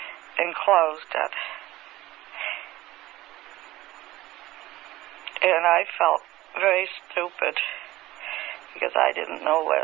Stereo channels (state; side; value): quieter; left; 17.1 dB